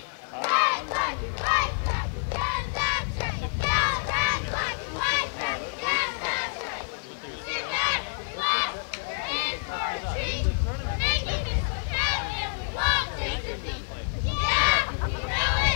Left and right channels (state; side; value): silent; right; digital silence